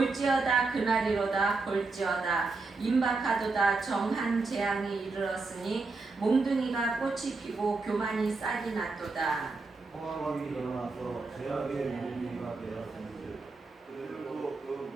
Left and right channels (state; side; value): quieter; left; 3.8 dB